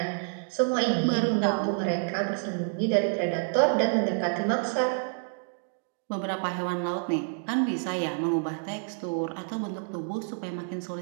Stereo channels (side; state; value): left; silent; 56 dB below the other